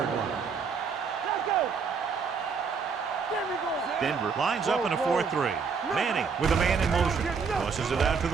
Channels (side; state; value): left; quieter; 5.5 dB